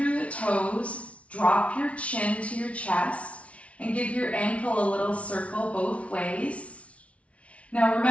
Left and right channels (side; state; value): right; late; 0.063 ms